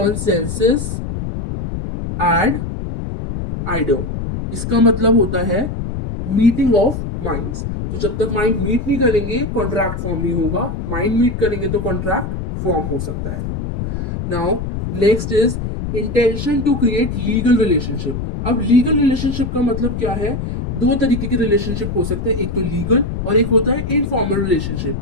ad idem. इसका मतलब होता है मीटिंग ऑफ माइंड्स। तो जब तक माइंड मीट नहीं करेंगे कॉन्ट्रैक्ट फॉर्म नहीं होगा, माइंड मीट करेंगे तो कॉन्ट्रैक्ट फॉर्म हो सकता है। Now next is intention to create legal relationship. अब लीगल रिलेशनशिप का मतलब क्या है? दो तरीके के रिलेशनशिप हो सकते हैं, एक तो लीगल और एक होता है इनफॉर्मल रिलेशनशिप।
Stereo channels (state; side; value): noise; left; rumble, 5 dB below the sound